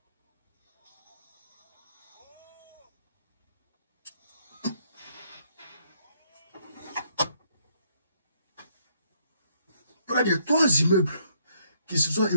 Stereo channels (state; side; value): inverted; both; correlation -0.70